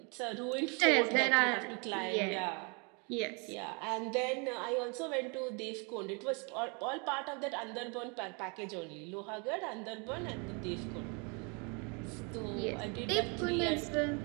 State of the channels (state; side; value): quieter; left; 33.6 dB